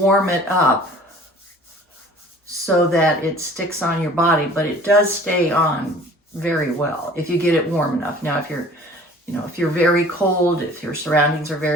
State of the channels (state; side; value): normal; both; correlation 0.48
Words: it up so that it sticks on your body, but it does stay on very well if you get it warm enough. Now if you're very cold, if your surroundings are